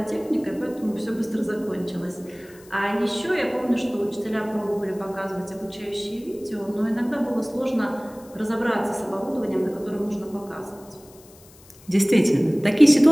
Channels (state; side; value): noise; left; hiss, 25 dB below the sound